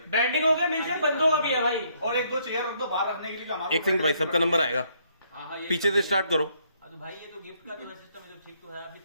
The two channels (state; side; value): inverted; both; correlation -0.70